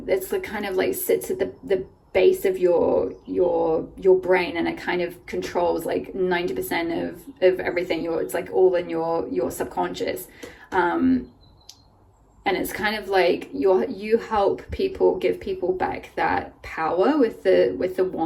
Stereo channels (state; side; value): identical; both; correlation 1.00